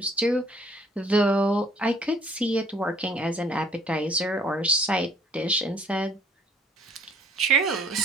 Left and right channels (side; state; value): both; normal; correlation 0.59